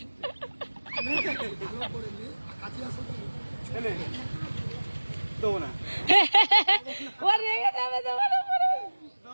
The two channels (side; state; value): both; inverted; correlation -1.00